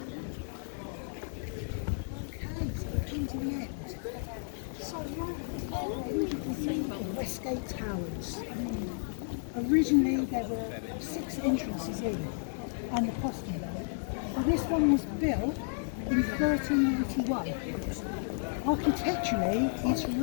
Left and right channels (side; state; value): right; silent; digital silence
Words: So right you can see the Westgate Towers. Originally there were 6 entrances in and the postern. But this one was built in 1391. Architecturally, it's